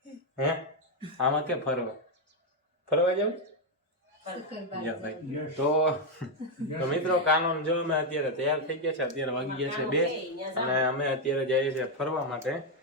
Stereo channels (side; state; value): both; normal; correlation 0.03